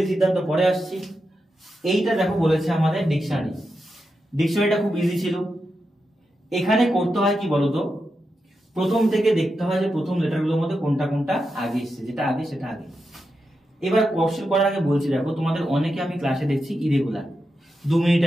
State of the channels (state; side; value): normal; both; correlation 0.88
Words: সিদ্ধান্ত পরে আসছি। এইটা দেখো বলেছে আমাদের ডিকশনারি, ডিকশনারিটা খুব ইজি ছিল। এখানে করতে হয় কি বলতো, প্রথম থেকে দেখতে হয় যে প্রথম লেটারগুলোর মধ্যে কোনটা কোনটা আগে এসছে, যেটা আগে সেটা আগে। এবার কোশ্চেন করার আগে বলছি দেখো তোমাদের অনেকে আমি ক্লাসে দেখছি ইরেগুলার, 2 মিনিট